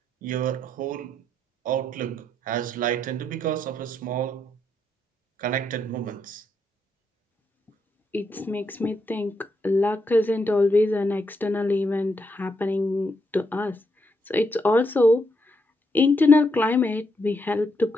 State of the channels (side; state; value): both; normal; correlation 0.79